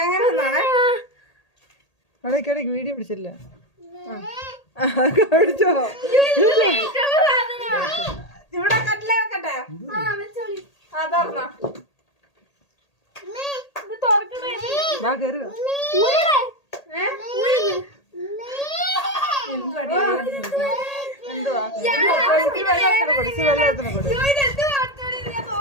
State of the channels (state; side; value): late; right; 1.8 ms